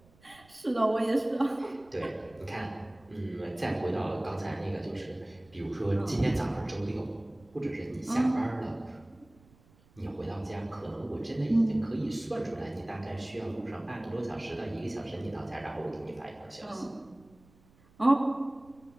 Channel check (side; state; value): right; noise; rumble, 28 dB below the sound